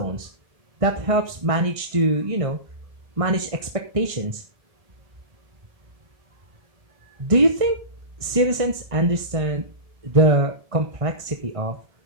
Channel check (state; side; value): late; left; 1.5 ms